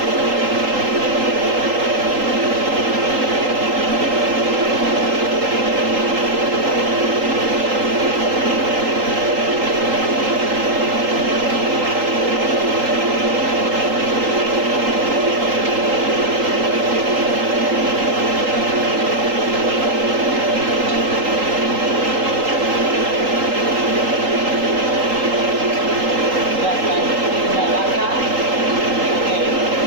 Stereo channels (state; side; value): late; left; 3.8 ms